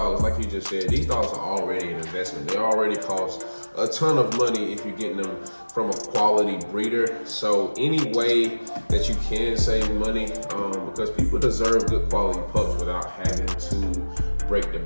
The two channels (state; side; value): inverted; both; correlation -1.00